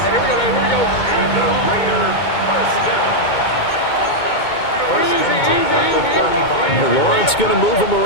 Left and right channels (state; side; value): late; right; 2.2 ms